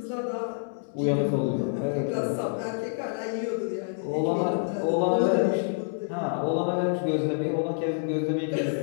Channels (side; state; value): right; silent; digital silence